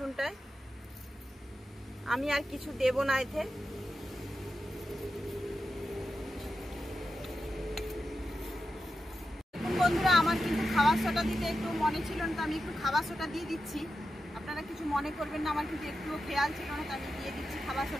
আমি আর কিছু দেব না এতে। বন্ধুরা আমার কিন্তু খাবার সোডা দিতে একটু মনে ছিল না, তো আমি একটু খাবার সোডা দিয়ে দিচ্ছি। আপনারা কিছু মনে করবেন না, আমার কিন্তু একটুও খেয়াল ছিল না, তো আমি দিয়ে দিচ্ছি খাবার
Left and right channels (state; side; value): normal; both; correlation 0.90